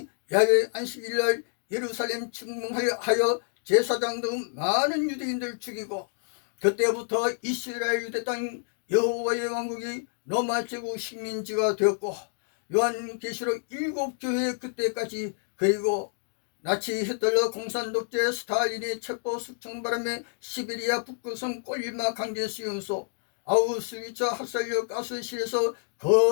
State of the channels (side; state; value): right; silent; digital silence